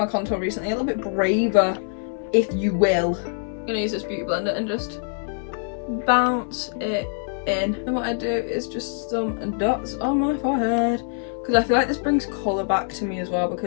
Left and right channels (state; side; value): silent; right; 63 dB below the other